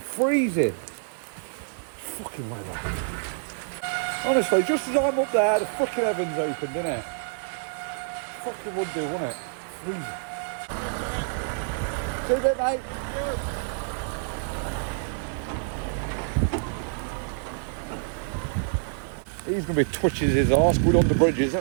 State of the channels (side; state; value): left; silent; digital silence